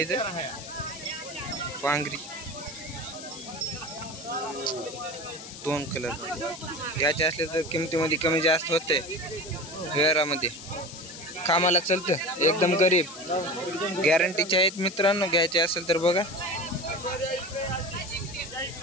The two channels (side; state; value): left; noise; hiss, 13 dB below the sound